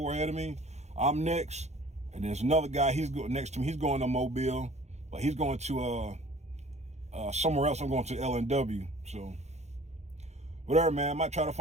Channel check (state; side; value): late; left; 0.33 ms